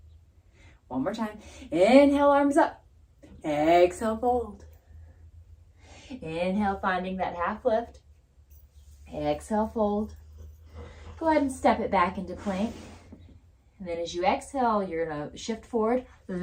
One more time. Inhale, arms up. Exhale, fold. Inhale, finding that half lift. Exhale, fold. Go ahead and step it back into plank. And then as you exhale, you're going to shift forward,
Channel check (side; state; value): both; identical; correlation 1.00